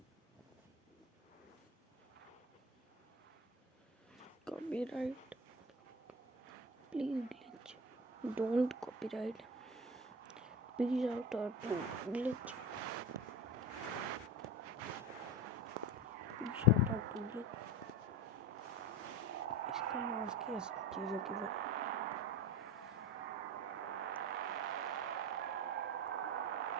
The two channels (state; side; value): normal; both; correlation 0.29